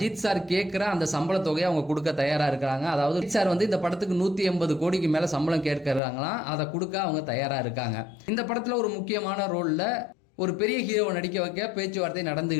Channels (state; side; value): drops out; right; at 6.0 s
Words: சார் கேட்குற அந்த சம்பள தொகையை அவங்க கொடுக்க தயாராக இருக்கிறாங்க. அதாவது அஜித் சார் இந்த படத்துக்கு 180 கோடிக்கு மேலே சம்பளம் கேட்கறாங்களாம். அதை கொடுக்க அவங்க தயாராக இருக்காங்க. இந்த படத்தில் ஒரு முக்கியமான ரோலில் ஒரு பெரிய ஹீரோவை நடிக்க வைக்க பேச்சுவார்த்தை